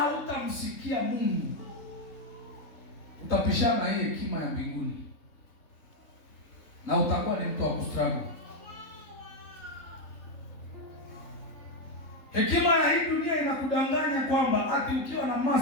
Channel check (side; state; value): right; late; 3.7 ms